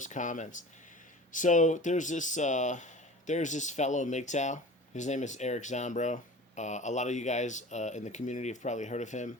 comments. So there's this fellow Mgtow. His name is Eric Zombrow. A lot of you guys in the community have probably heard of him,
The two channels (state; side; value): normal; both; correlation 0.38